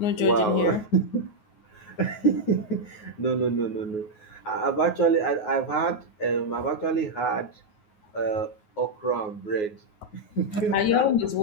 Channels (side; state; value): right; late; 9.5 ms